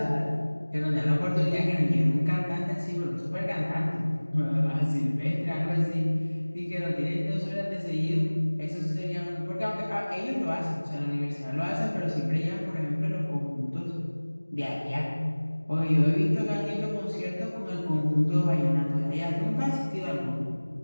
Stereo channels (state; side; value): inverted; both; correlation -1.00